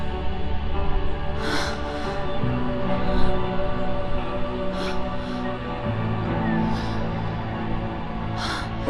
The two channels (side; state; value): both; identical; correlation 1.00